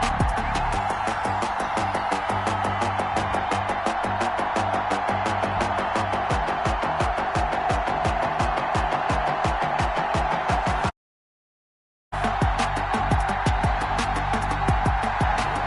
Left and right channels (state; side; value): identical; both; correlation 1.00